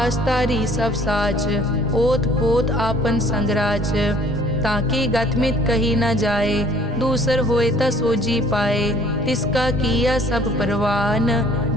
तारी सब साच, ओत पोत आपन संगराज। ताकि गतमित कही न जाए, दूसर होए ता सोजी पाए। तिसका किया सब परवान,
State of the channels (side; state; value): both; normal; correlation 0.55